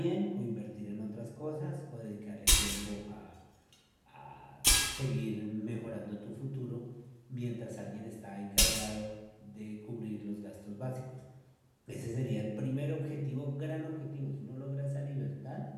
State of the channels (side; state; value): both; identical; correlation 1.00